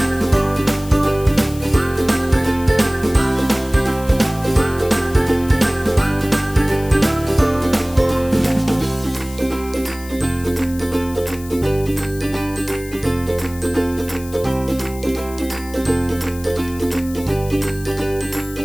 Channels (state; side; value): noise; left; hiss, 17 dB below the sound